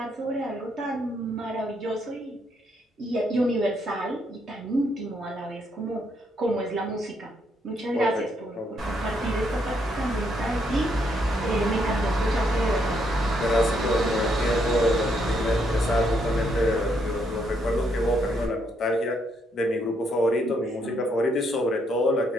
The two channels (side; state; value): both; normal; correlation 0.74